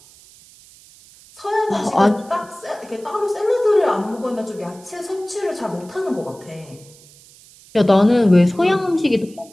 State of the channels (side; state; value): right; noise; hiss, 24 dB below the sound